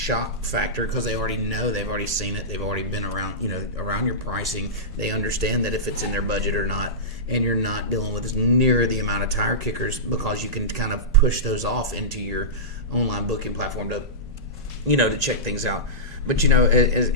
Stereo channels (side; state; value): both; normal; correlation -0.16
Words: factor, because they already know, they've already seen it, they've already been around, around your pricing. They understand that if it's in their budget or not, and you're not dealing with near the amount of tire kickers, because you can kind of push those off into your online booking platform to, to check things out. But